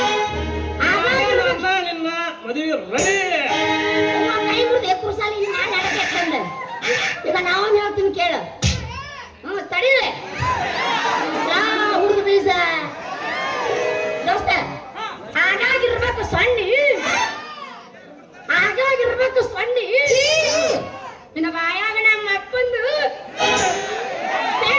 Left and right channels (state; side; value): identical; both; correlation 1.00